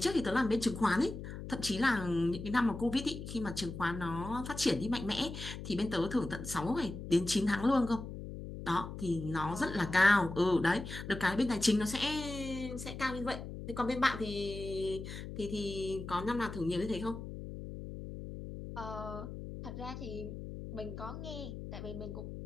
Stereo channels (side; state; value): left; noise; hum, 9 dB below the sound